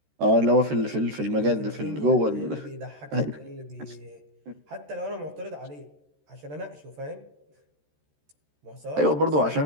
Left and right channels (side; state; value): left; late; 13 ms